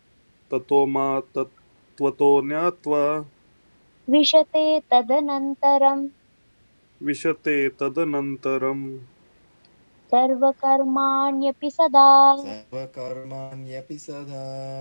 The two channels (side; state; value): both; inverted; correlation -1.00